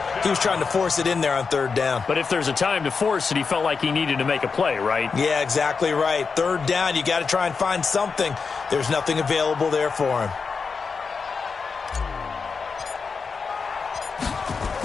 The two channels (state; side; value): quieter; right; 5.1 dB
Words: He was trying to force it in there on 3rd down. But if there's a time to force it, he felt like he needed to make a play, right? Yeah, exactly right. 3rd down, you got to try and find something. There's nothing available there for him.